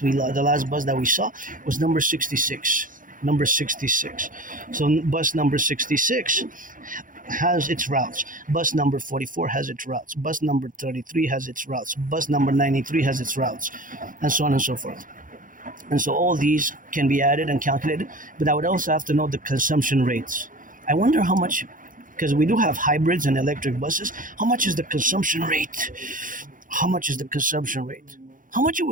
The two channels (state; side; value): late; left; 0.39 ms